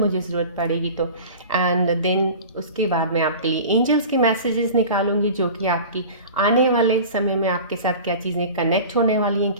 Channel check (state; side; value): inverted; both; correlation -0.38